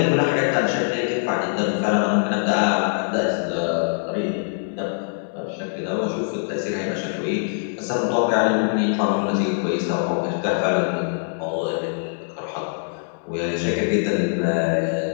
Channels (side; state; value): right; silent; 63 dB below the other